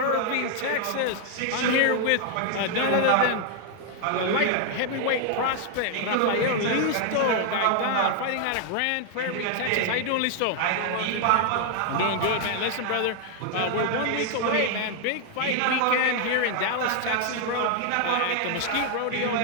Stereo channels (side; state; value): both; different; correlation 0.00